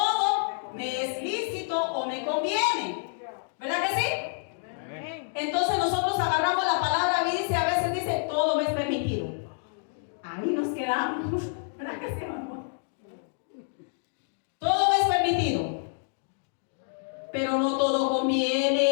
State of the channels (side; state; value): right; silent; digital silence